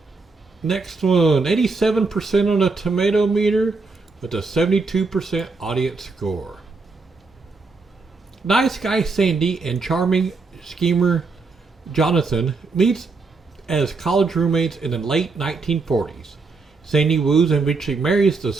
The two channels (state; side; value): quieter; left; 4.1 dB